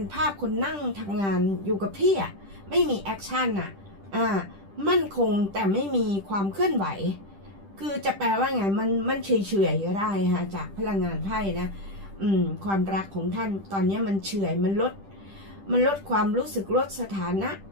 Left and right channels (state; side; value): late; left; 10 ms